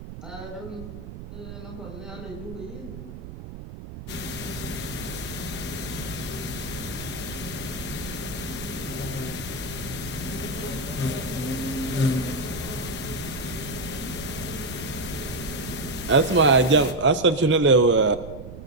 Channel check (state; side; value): noise; right; rumble, 12 dB below the sound